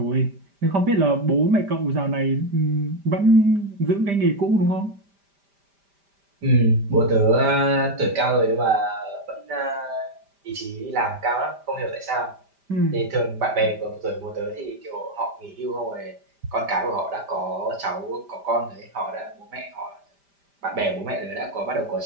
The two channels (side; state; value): left; late; 5.1 ms